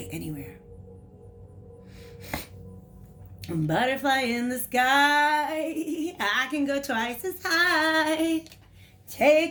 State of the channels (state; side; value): identical; both; correlation 1.00